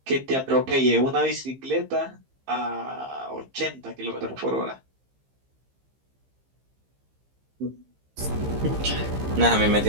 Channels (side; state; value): left; late; 15 ms